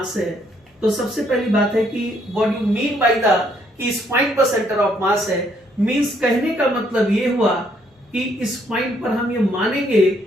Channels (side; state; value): both; normal; correlation 0.69